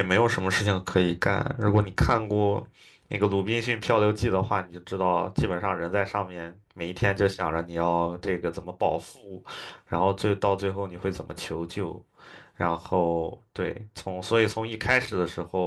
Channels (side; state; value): both; identical; correlation 1.00